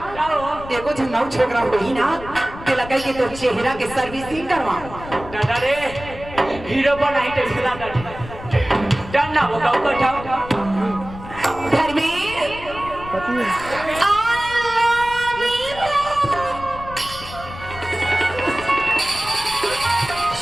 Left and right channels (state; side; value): noise; left; rumble, 14 dB below the sound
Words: एगो झंगाऊ छोकरा होई ना के लगे कि तो चेहरा के सर्विसिंग करवा दादा रे हीरो बनाई तो हिला दादा डन ना होगा कठाओ घर में